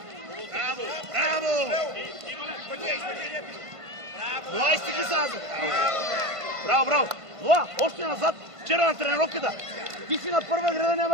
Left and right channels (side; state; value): left; late; 1.5 ms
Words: Браво! Ноа, изтигли се назад. Браво! Ноа, още назад. Вчера на тренировката. Ти си на първа града,